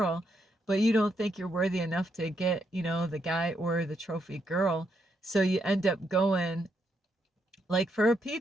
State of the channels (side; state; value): both; normal; correlation 0.78